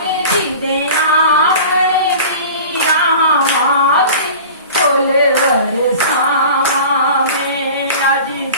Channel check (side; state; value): both; inverted; correlation -0.39